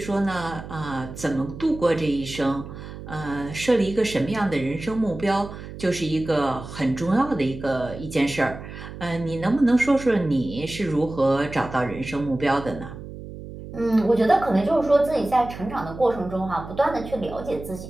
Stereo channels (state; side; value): noise; right; hum, 12 dB below the sound